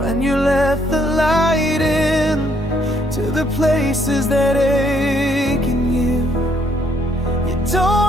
you let the light in to the places that ache in you. You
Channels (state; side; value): normal; both; correlation 0.69